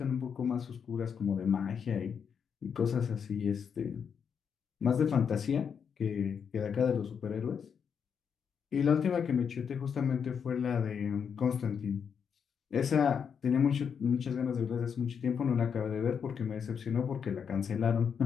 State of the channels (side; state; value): right; quieter; 7.0 dB